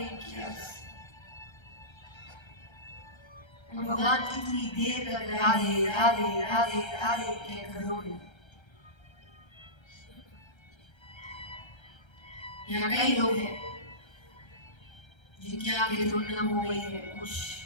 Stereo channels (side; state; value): right; late; 1.3 ms